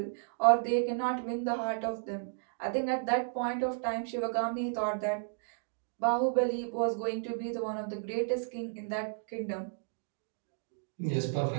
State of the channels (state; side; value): silent; left; digital silence